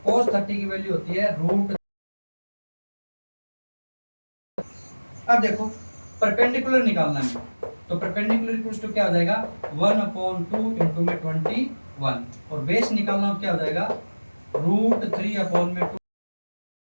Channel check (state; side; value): inverted; both; correlation -1.00